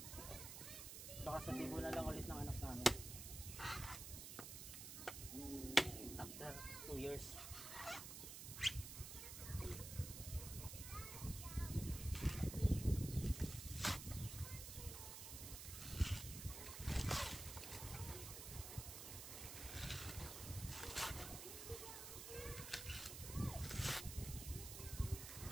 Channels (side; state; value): right; noise; hiss, 8 dB below the sound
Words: Baka sa tibo na lang ulit ng anak namin after 2 years.